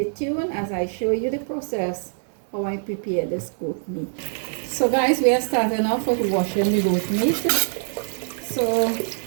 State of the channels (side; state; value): left; silent; digital silence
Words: tuned as I show you the process how I prepare this goat meat. So, guys, we are starting off with washing the goat meat. So